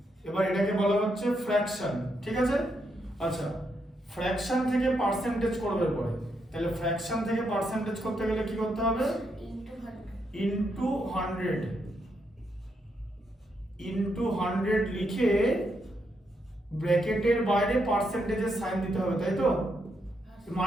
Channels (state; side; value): normal; both; correlation 0.79